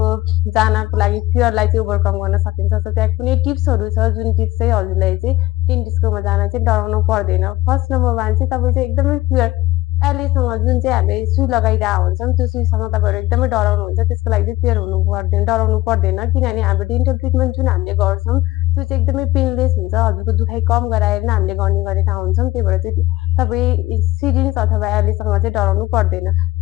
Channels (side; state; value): right; quieter; 18.0 dB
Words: जानको लागि फियरलाई चाहिँ ओभरकम गर्न सकिन्छ। सो त्यहाँ कुनै टिप्सहरू छ जुन टिप्स चाहिँ हजुरलाई चाहिँ डेन्टिस्टकोमा जान चाहिँ डराउनु पर्दैन। फर्स्ट नम्बर 1 चाहिँ तपाईँ चाहिँ एकदमै फियर एलएसँग जुन चाहिँ हामीले सुई लगाइरहेको हुन्छौँ त्यो सुईसँग तपाईँहरू एकदमै डराउनुहुन्छ। त्यसको लागि चाहिँ फियर हुनु पर्दैन, डराउनु पर्दैन। किनभने हाम्रो डेन्टल ट्रिटमेन्ट जुन हामीले गर्छौँ त्यो चाहिँ एकदमै पेनलेस हुन्छ। हजुरको दुखाइ कम गराएर नै हामीले गर्ने गरेका हुन्छौँ। त्यही भएर चाहिँ तपाईँ सिरिन्ज अथवा एलएसँग चाहिँ डराउनु पर्दैन।